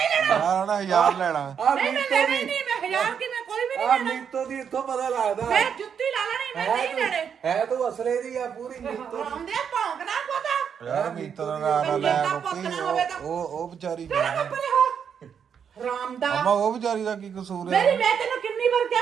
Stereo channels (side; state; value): left; quieter; 7.5 dB